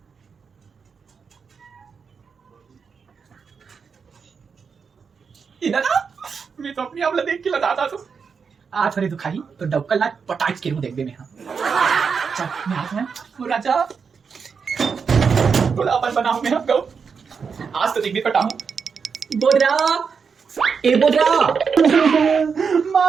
दादा मैं तो अपनी आपला देख के लगाता तो आज थोड़ी दुखाई तो डॉक्टर ला पटाच के देख दे मैं. चल मैं आज में वो राजा थोड़ा अपन बनाऊं मैं आपको आज तो दिख भी पटाऊं. बोदरा ए बोदरा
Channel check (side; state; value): left; quieter; 5.9 dB